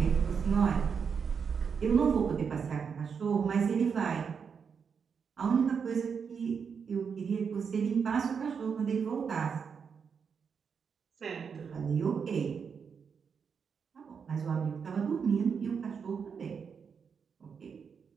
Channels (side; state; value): left; quieter; 6.4 dB